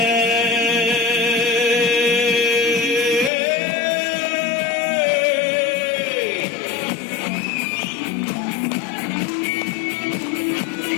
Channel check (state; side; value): drops out; right; at 3.3 s